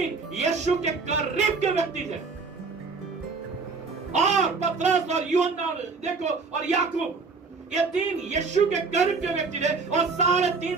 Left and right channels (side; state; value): left; quieter; 4.5 dB